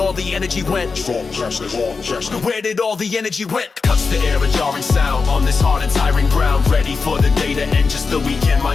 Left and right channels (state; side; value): quieter; right; 4.7 dB